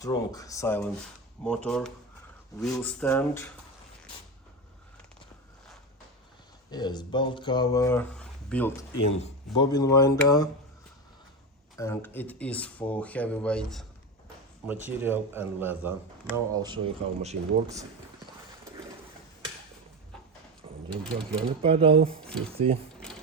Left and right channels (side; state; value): both; normal; correlation 0.20